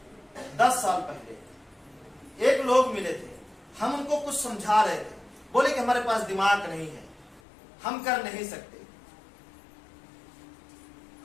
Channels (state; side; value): drops out; right; at 7.4 s